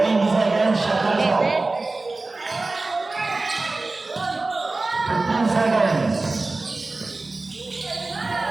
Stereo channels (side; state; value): left; quieter; 3.3 dB